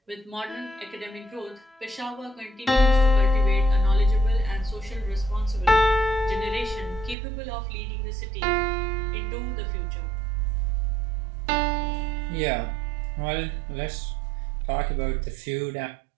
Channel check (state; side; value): drops out; left; at 7.2 s